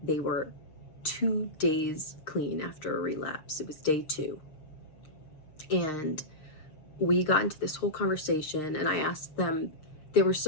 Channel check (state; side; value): late; right; 6.7 ms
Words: they were 2 days clean after a relapse. It was day 2. And we got into this whole conversation, and I asked them, they were